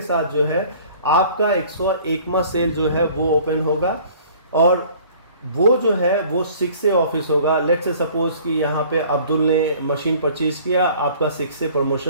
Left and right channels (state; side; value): inverted; both; correlation -0.51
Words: साथ जो है आपका 101वां सेल जो है वो ओपन होगा और वो जो है वो 6A ऑफिस होगा। लेट्स से सपोज कि यहाँ पे अब्दुल ने मशीन परचेज किया, आपका 6A